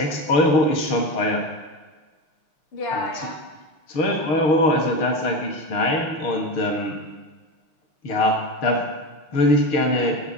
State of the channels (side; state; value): right; late; 6.6 ms